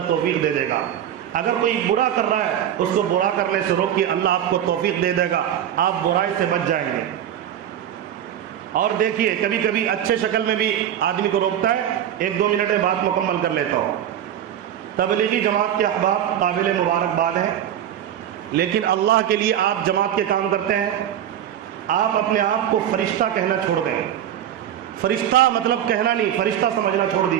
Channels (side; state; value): left; quieter; 10.5 dB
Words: توفیق دے دے گا۔ اگر کوئی برا کر رہا ہے اس کو برا کرنے سے روکیے، اللہ آپ کو توفیق دے دے گا، آپ برائی سے بچ جائیں گے۔ اور دیکھیے کبھی کبھی اچھے شکل میں بھی آدمی کو روکتا ہے، 1-2 منٹ میں بات مکمل کر لیتا ہوں۔ تبلیغی جماعت کے احباب قابل مبارکباد ہیں، لیکن اللہ کے لیے آپ جماعت کے کام کرتے ہیں، آپ اپنے آپ کو فرشتہ کہنا چھوڑ دیں۔ فرشتہ مطلب کہنا نہیں، فرشتہ سمجھنا چھوڑ